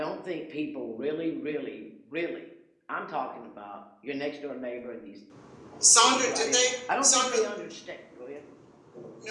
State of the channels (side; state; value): both; identical; correlation 1.00